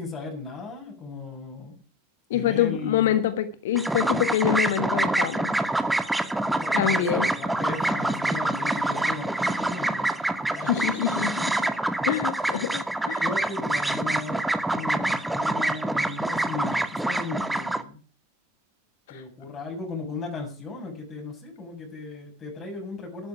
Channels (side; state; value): both; normal; correlation 0.51